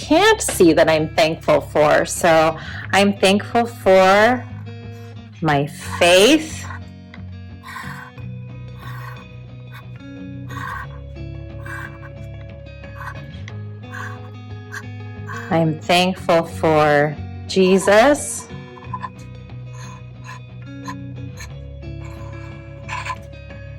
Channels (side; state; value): both; identical; correlation 1.00